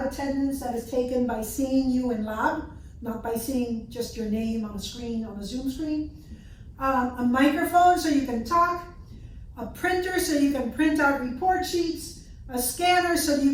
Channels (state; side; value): identical; both; correlation 1.00